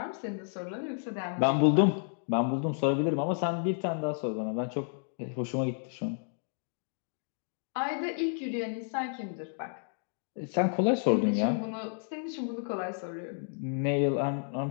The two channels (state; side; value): silent; right; digital silence